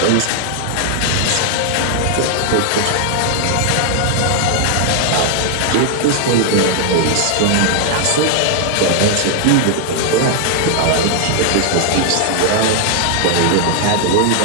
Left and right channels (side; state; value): both; different; correlation 0.00